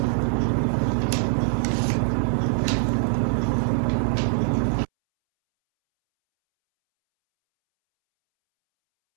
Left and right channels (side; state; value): left; silent; 63 dB below the other